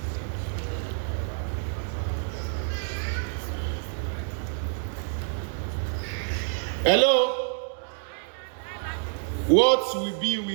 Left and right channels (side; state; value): left; silent; digital silence